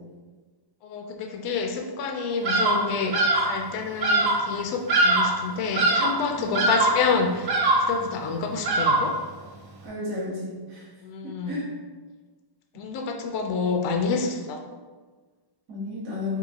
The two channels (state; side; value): late; left; 1.1 ms